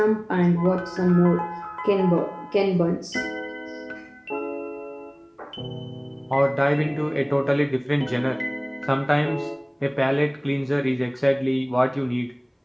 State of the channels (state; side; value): identical; both; correlation 1.00